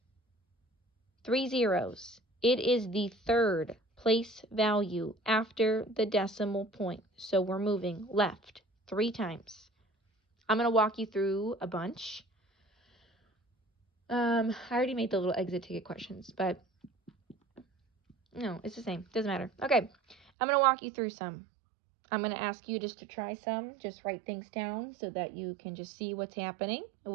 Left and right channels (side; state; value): left; drops out; at 20.2 s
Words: 3 zeros. It is the third place value after the decimal point. So we're moving left 3 times. I'm going to walk you through a bunch. I already made the little exit ticket questions, but no, it's the same. Doesn't matter. Okay, I'm going to walk you through some. I'm going to ask you just to try some. Just write things down so that you can just see what's happening, and